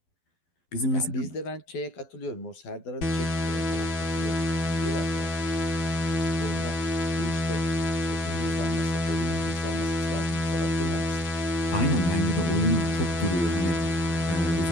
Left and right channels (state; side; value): late; right; 12 ms